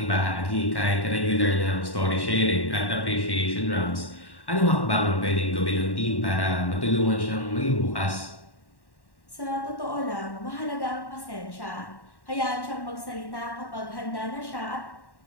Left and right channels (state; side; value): late; right; 1.1 ms